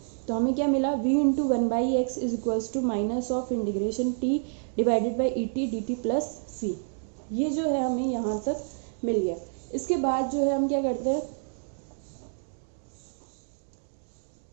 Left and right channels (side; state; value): left; silent; digital silence